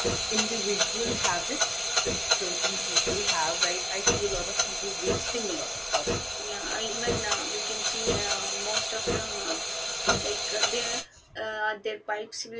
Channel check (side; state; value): both; identical; correlation 1.00